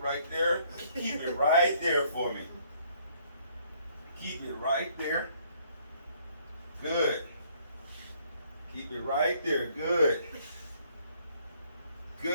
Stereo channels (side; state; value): both; inverted; correlation -0.64